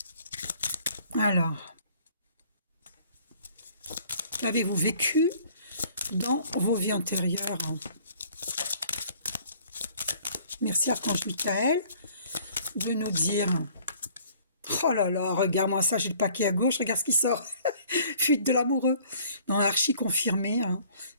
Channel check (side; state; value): both; inverted; correlation -0.56